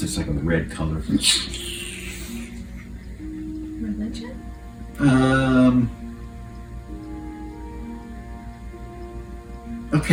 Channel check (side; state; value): both; identical; correlation 1.00